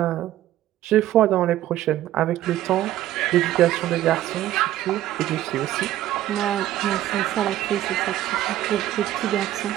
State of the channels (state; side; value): quieter; left; 13.6 dB